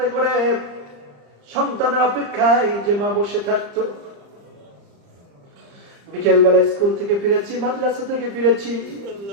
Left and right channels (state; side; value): late; left; 35 ms